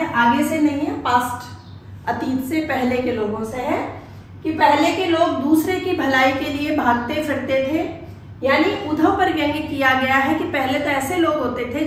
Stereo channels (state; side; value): identical; both; correlation 1.00